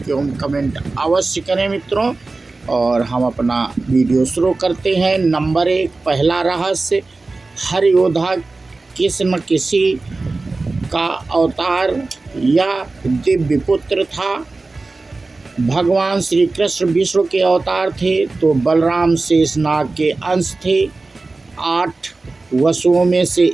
एवं कमेंट अवश्य करें मित्रों। और हम अपना वीडियो शुरू करते हैं। नंबर 1, पहला रहस्य। हर योद्धा किसी न किसी का अवतार या दिव्य पुत्र था। भगवान श्री कृष्ण विष्णु के अवतार थे तो बलराम शेषनाग के अंश थे। 8 वसुओं में से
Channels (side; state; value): left; quieter; 3.5 dB